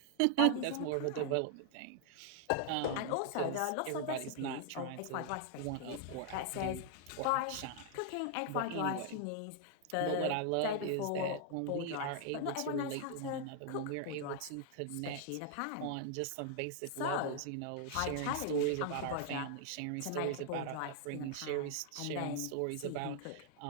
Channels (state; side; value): different; both; correlation 0.00